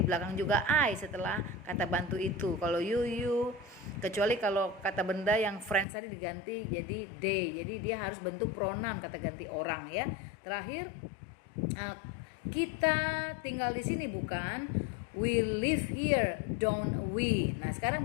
belakang juga I setelah kata bantu itu. Kalau you. Kecuali kalau kata benda yang friends tadi diganti jadi they. Jadi dia harus bentuk pronoun, kata ganti orang ya. Terakhir, kita tinggal di sini, bukan? We live here, don't we? Nah, sekarang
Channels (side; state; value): right; drops out; at 5.9 s